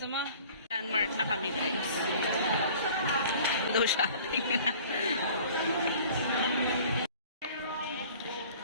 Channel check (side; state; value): both; inverted; correlation -0.48